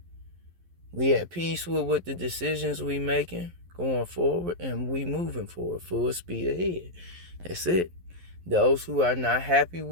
We at peace with what the decisions we making going forward, and we moving forward full speed ahead. That's it. Those who are not happy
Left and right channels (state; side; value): late; left; 11 ms